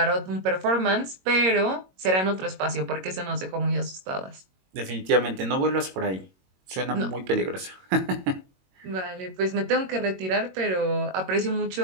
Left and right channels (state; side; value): late; left; 22 ms